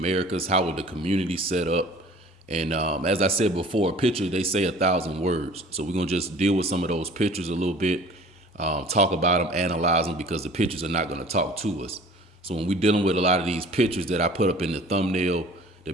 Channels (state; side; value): normal; both; correlation 0.47